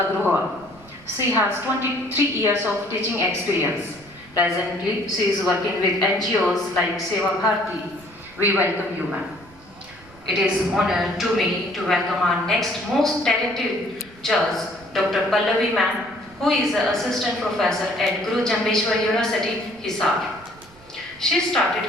She has 23 years of teaching experience. Presently, she is working with NGOs like Seva Bharati. We welcome you, ma'am. It is an honor to me to welcome our next most talented judge, Dr. Pallavi ma'am, who is an assistant professor at Guru Jambeshwar University, Hisar. She started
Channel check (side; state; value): right; noise; rumble, 24 dB below the sound